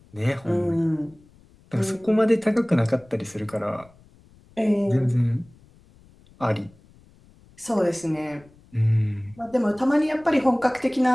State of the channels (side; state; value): left; noise; rumble, 27 dB below the sound